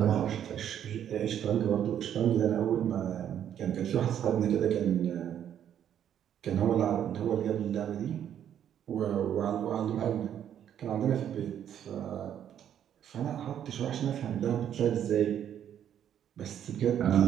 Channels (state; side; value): quieter; left; 9.8 dB